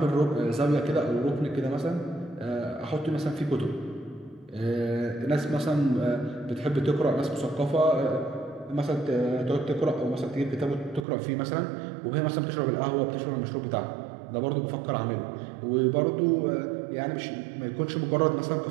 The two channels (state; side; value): drops out; left; at 11.1 s